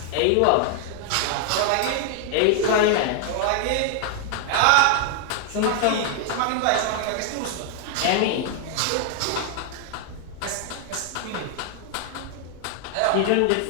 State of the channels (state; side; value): different; both; correlation 0.00